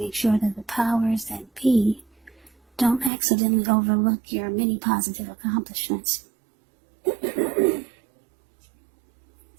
sure that the powers that be don't accidentally overlook your many positive accomplishments.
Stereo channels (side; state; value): left; drops out; at 3.1 s